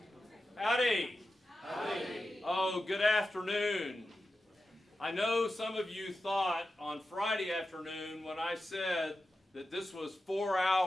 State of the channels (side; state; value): both; normal; correlation 0.92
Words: Howdy. Howdy. Oh, good afternoon. I know some of you thought on Friday afternoon when I said that this was 4